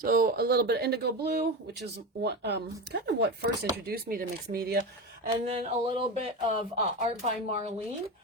a little bit of Indigo Blue, which is what kind of what first introduced me to mixed media, and then a little bit of Art by Marlene.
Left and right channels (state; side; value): normal; both; correlation 0.21